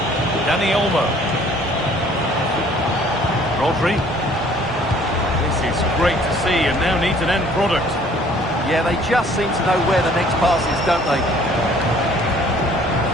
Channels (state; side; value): normal; both; correlation 0.56